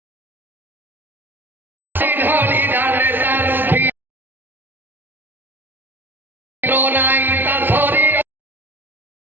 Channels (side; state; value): left; late; 0.096 ms